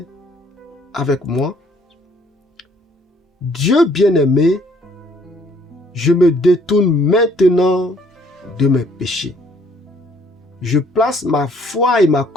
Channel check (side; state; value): both; normal; correlation 0.62